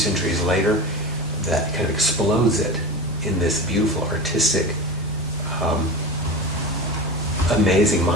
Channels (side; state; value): both; normal; correlation 0.28